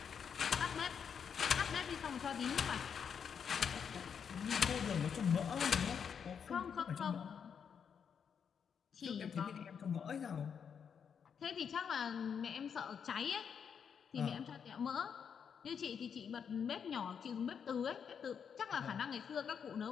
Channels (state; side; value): quieter; right; 7.2 dB